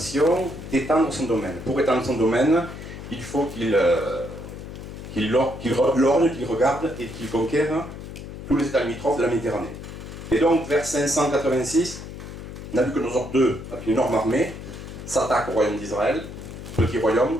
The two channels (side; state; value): left; noise; hum, 11 dB below the sound